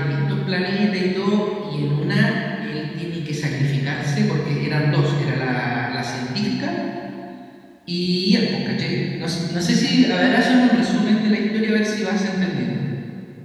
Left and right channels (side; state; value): both; identical; correlation 1.00